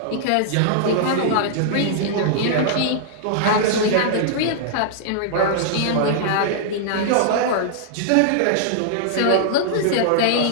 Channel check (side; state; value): both; different; correlation -0.01